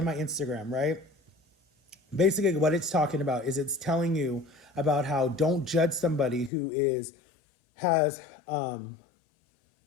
my Instagram, right? Basically what it's talking about is it's telling you about how don't judge somebody who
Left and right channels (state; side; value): drops out; right; at 6.5 s